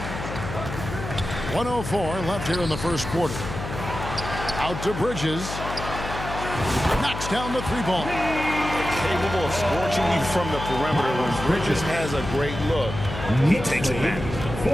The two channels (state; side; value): noise; left; hum, 8 dB below the sound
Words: 1:04 left here in the first quarter. Out to Bridges. Knocks down the 3 ball. Capable of scorching you from the perimeter. When Bridges has a great look, he takes it back.